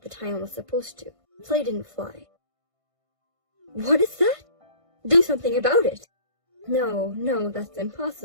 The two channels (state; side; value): late; left; 1.5 ms